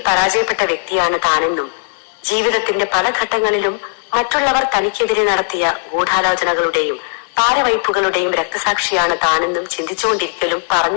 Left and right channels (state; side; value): silent; right; 69 dB below the other